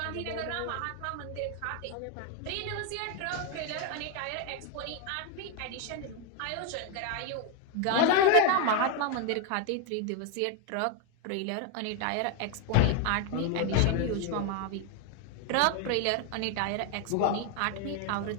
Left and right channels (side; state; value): both; different; correlation 0.01